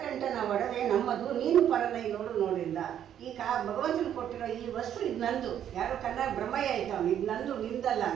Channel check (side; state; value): left; quieter; 10.0 dB